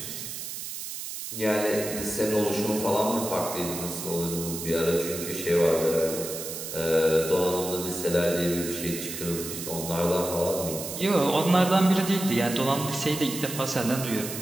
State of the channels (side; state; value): right; noise; hiss, 7 dB below the sound